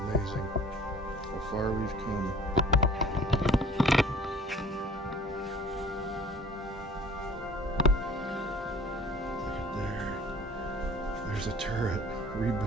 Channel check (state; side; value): normal; both; correlation 0.49